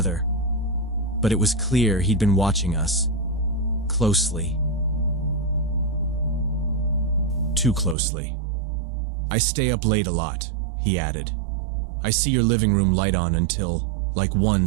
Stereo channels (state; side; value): drops out; left; at 8.0 s